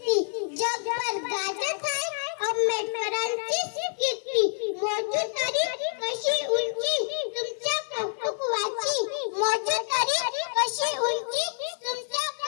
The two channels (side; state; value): right; silent; digital silence